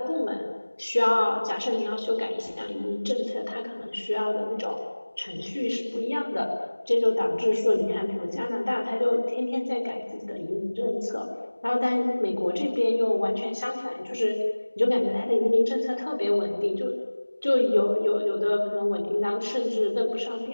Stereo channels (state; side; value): inverted; both; correlation -1.00